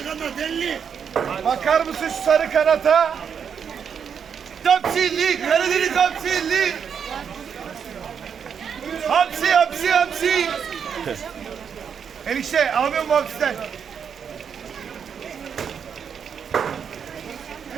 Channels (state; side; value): quieter; left; 7.3 dB